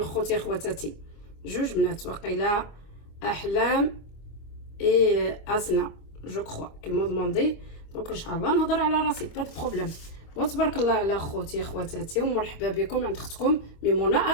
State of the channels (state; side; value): late; right; 25 ms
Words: خوتي خواتاتي جوج بنات وقيلا احلام اي اسنا جو كخوا كيما دوموندي دونك ان شاء الله نهضر على راسي با دو بروبليم وتبارك الله على خوتي خواتاتي ومرحبا بكم عند اختكم ميمونه